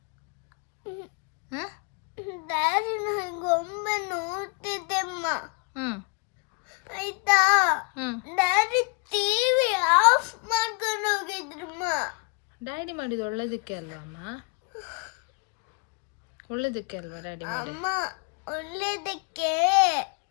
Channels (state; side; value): quieter; right; 35.7 dB